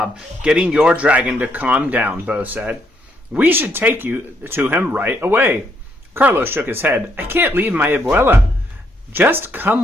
getting your dragon to calm down, Bo said. We should take you to him right away. Carlos shook his head. I can't leave my abuela. Just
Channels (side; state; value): both; normal; correlation 0.73